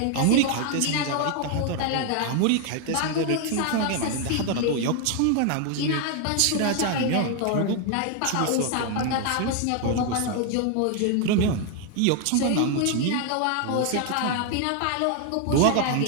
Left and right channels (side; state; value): both; different; correlation 0.01